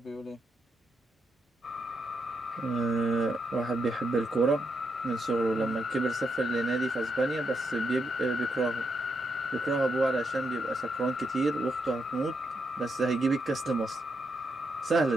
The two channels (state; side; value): normal; both; correlation 0.81